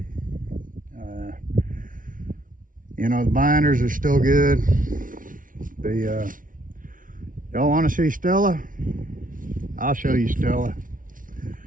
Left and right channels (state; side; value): late; left; 0.39 ms